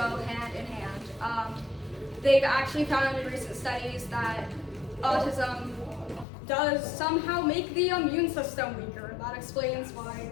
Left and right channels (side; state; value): right; drops out; at 6.2 s